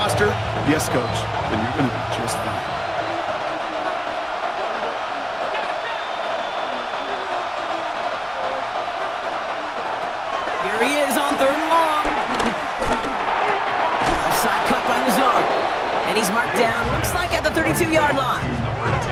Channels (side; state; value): both; identical; correlation 1.00